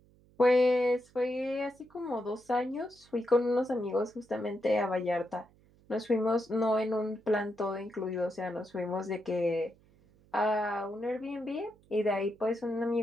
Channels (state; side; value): noise; right; hum, 29 dB below the sound